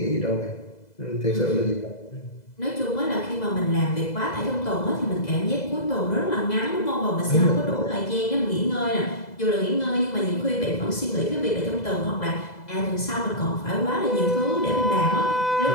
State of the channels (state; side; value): late; right; 2.0 ms